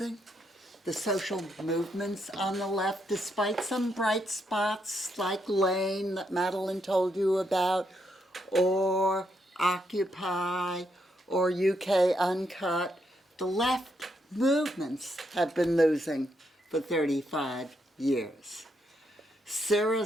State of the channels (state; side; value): normal; both; correlation 0.78